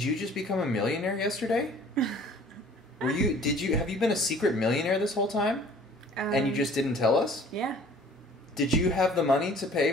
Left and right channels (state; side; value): normal; both; correlation 0.51